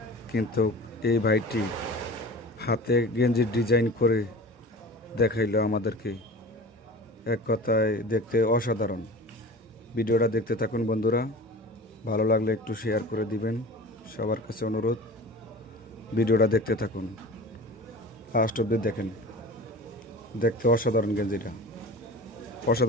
কিন্তু এই ভাইটি হাতে গেঞ্জির ডিজাইন করে দেখাইলো আমাদেরকে। এক কথায় দেখতে অসাধারণ। ভিডিওটা দেখতে থাকুন বন্ধুরা, ভালো লাগলে একটু শেয়ার করে দিবেন, সবার কাছে অনুরোধ। ভিডিওটা দেখতে থাকুন, লাস্ট অবধি দেখেন। দেখতে অসাধারণ, গেঞ্জিটা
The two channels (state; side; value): normal; both; correlation 0.37